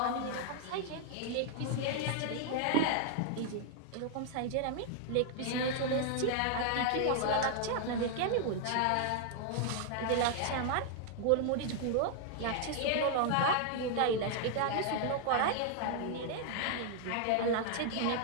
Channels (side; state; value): both; different; correlation 0.00